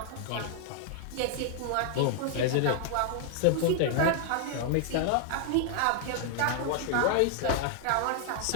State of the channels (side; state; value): both; different; correlation 0.00